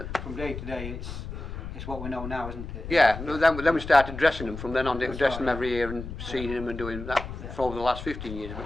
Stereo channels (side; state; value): left; noise; rumble, 9 dB below the sound